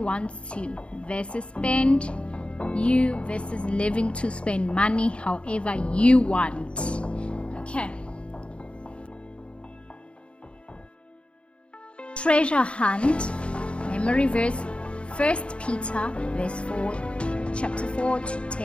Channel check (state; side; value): late; right; 0.058 ms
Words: to, versus spend you versus living to spend money however you want. Okay. Treasure hunt. Memory verse 1 Peter verse 4, chapter 4 to